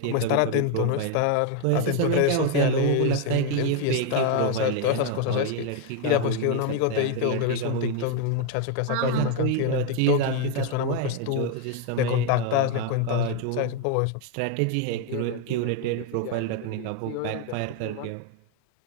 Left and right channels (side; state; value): both; different; correlation 0.01